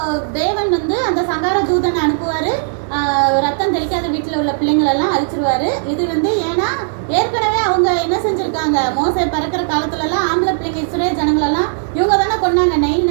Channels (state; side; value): silent; left; 57 dB below the other